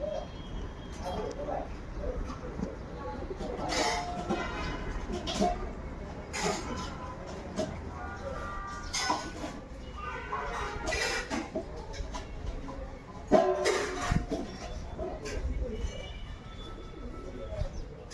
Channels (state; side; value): identical; both; correlation 1.00